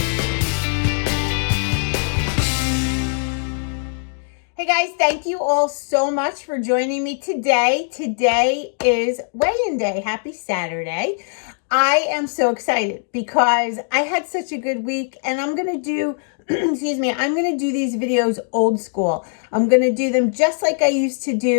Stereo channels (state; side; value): silent; right; digital silence